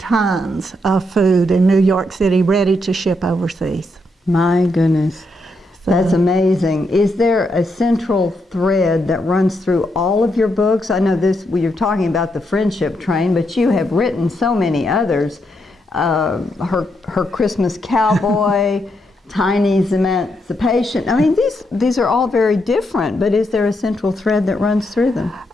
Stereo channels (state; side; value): normal; both; correlation 0.80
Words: tons of food in New York City ready to ship overseas. My goodness. That's amazing. Is there a central thread that runs through all of your books? I know you're talking about the friendship train, but you have written so many others. Her Christmas Cowboy, Tiny's Emancipation. I mean, these are all very different, but is there a central thread that runs through them?